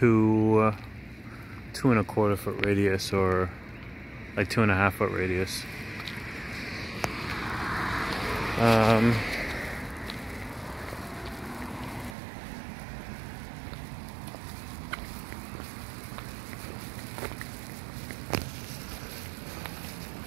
a quarter foot radius, or like 2.5 foot radius.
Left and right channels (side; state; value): left; drops out; at 12.2 s